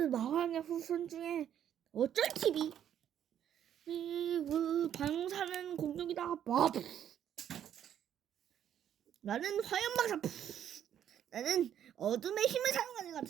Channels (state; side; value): quieter; left; 9.9 dB